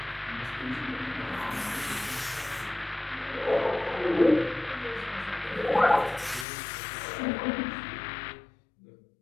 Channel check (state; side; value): drops out; right; at 6.5 s